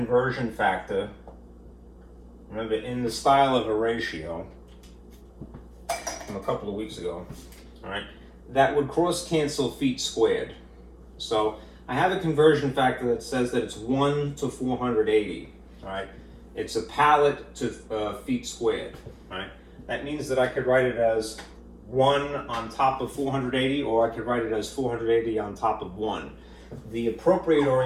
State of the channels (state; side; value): identical; both; correlation 1.00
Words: factor, remember, in the style of a ratio from a couple of weeks ago, all right, that would cross-cancel feet squared. So I have a conversion factor that says that it's 1 to 480, all right? It's a pallet to feet squared, all right? That means that I could write it as 1 on top of 480, or I could write it as 480 on top of 1. The appropriate